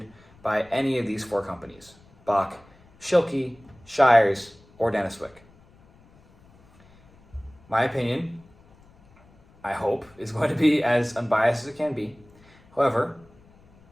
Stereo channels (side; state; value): left; noise; rumble, 28 dB below the sound